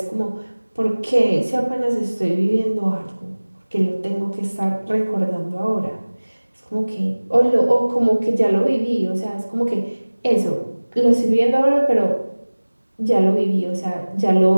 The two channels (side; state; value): both; inverted; correlation -1.00